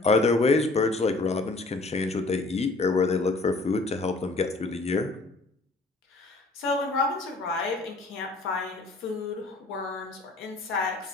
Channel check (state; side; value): quieter; right; 3.2 dB